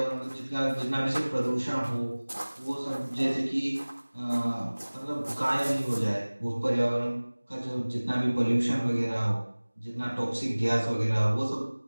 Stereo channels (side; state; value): both; inverted; correlation -1.00